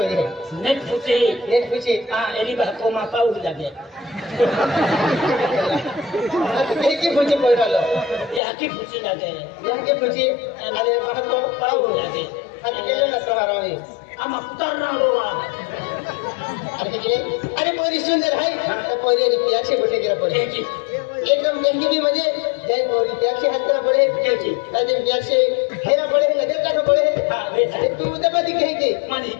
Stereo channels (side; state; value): right; drops out; at 8.4 s